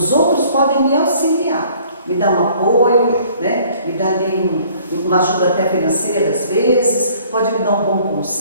outros podem me auxiliar, me dar um apoio, né? Me dar ali uma ajuda até financeira às vezes, pode me dar um bom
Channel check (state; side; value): inverted; both; correlation -0.56